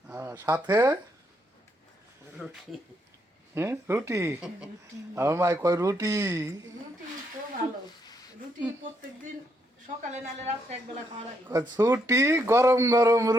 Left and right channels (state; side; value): normal; both; correlation 0.76